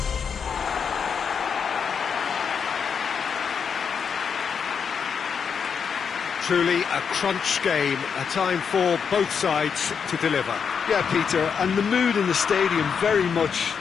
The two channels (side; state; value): right; quieter; 6.6 dB